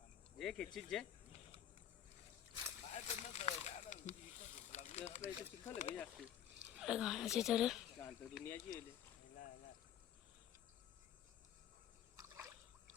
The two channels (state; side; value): quieter; right; 10.0 dB